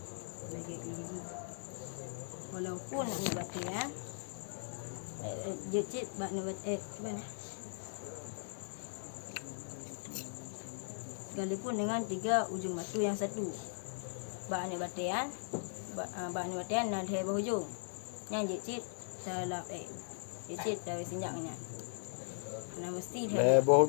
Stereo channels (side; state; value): right; silent; digital silence